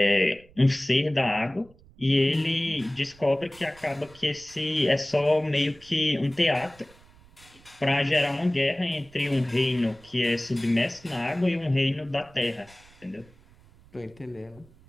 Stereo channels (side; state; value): right; noise; rumble, 26 dB below the sound